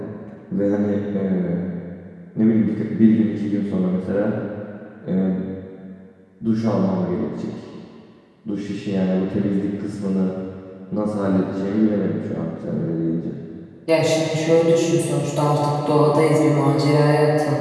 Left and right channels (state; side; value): identical; both; correlation 1.00